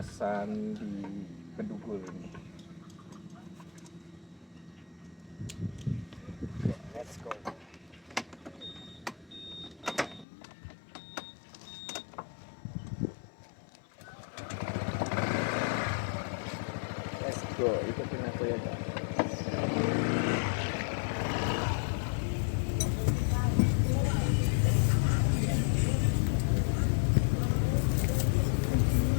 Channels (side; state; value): right; drops out; at 10.2 s